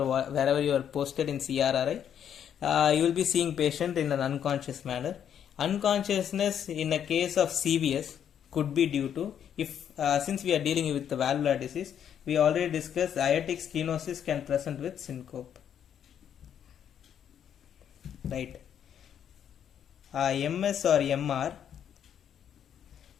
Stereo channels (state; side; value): quieter; right; 9.1 dB